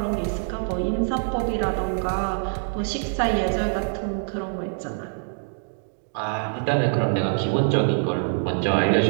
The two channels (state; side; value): silent; left; digital silence